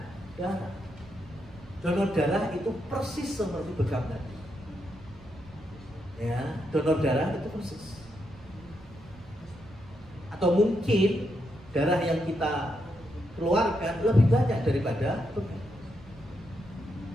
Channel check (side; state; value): right; noise; rumble, 21 dB below the sound